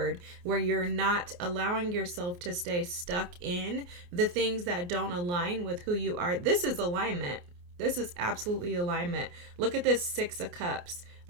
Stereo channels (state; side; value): late; left; 28 ms